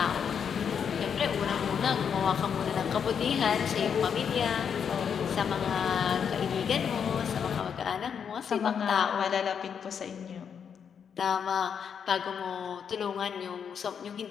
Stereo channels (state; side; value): quieter; right; 7.3 dB